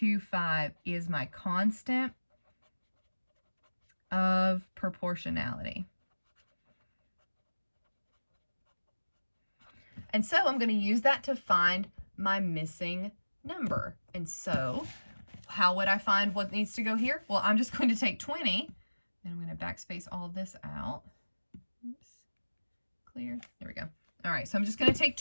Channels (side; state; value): both; inverted; correlation -1.00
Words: is my constant of proportionality. And so I'm going to use that to find my missing number. And so how would I find what needs to go here? Well, I'm just going to take 20, and I'm going to backspace all of this out. Oops. Clear. There we go. All right, so I'm just going to take